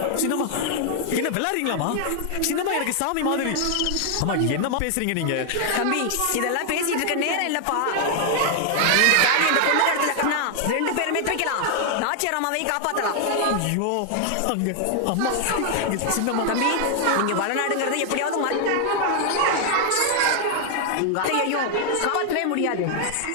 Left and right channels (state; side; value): different; both; correlation 0.00